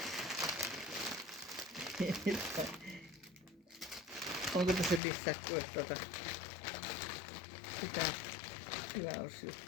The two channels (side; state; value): right; drops out; at 5.0 s